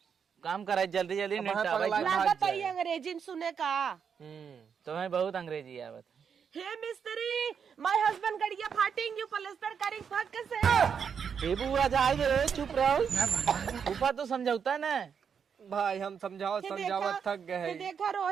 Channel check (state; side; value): quieter; left; 6.9 dB